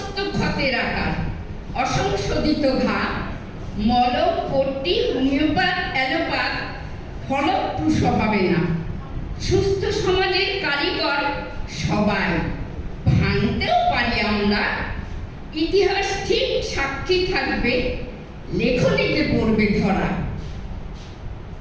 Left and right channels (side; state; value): both; identical; correlation 1.00